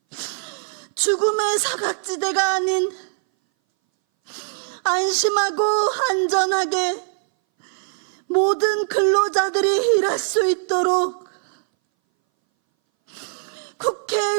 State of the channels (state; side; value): silent; left; 61 dB below the other